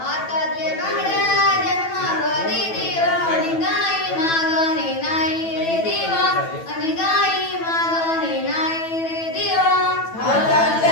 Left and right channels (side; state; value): right; late; 9.1 ms